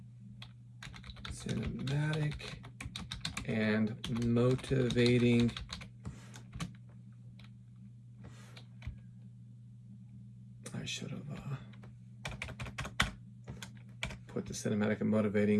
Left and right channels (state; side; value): identical; both; correlation 1.00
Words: and motivating I should have put the cinematic and